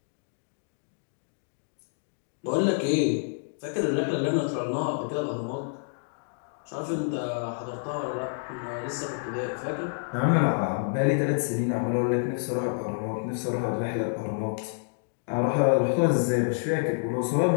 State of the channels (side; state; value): right; silent; digital silence